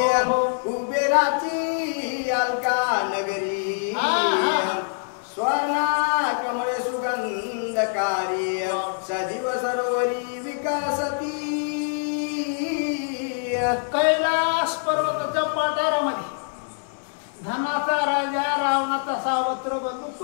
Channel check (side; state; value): right; silent; 62 dB below the other